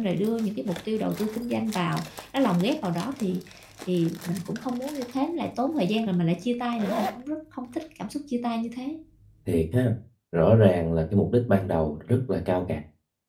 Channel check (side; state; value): both; identical; correlation 1.00